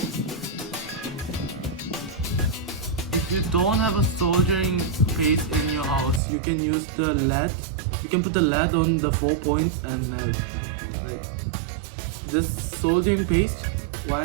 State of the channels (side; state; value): left; drops out; at 6.2 s